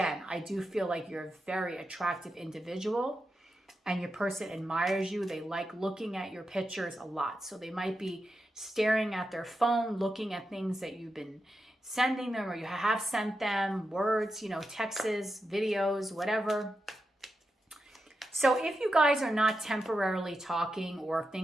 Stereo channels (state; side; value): normal; both; correlation 0.88